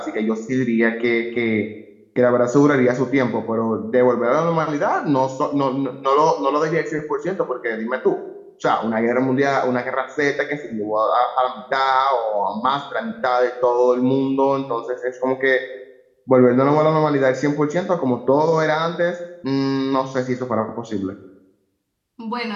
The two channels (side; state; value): both; identical; correlation 1.00